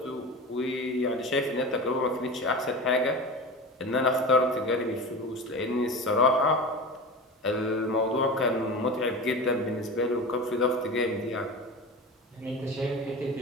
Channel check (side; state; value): both; normal; correlation 0.30